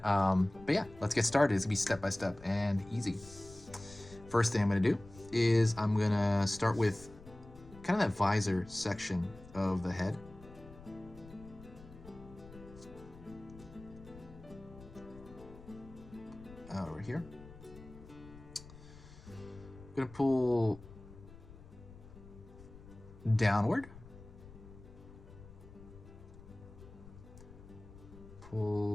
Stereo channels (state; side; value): noise; left; rumble, 18 dB below the sound